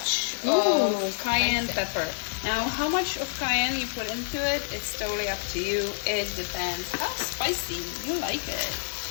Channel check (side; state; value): right; silent; digital silence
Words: of cayenne pepper. Now, how much of cayenne you put into it, it's totally up to you. It depends how spicy you like it.